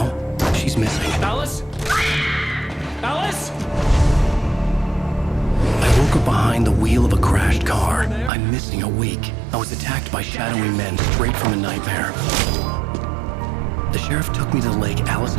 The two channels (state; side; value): drops out; left; at 8.3 s